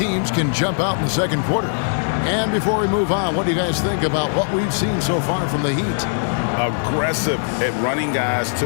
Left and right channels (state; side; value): silent; right; digital silence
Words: can jump out in the second quarter. And before we move on, what do you guys think about what we've seen so far from the Heat? Aggressive at running guys to